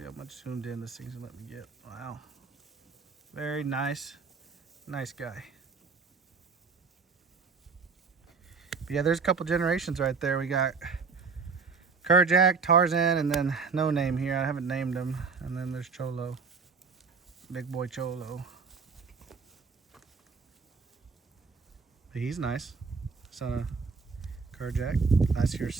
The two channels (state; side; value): quieter; left; 5.0 dB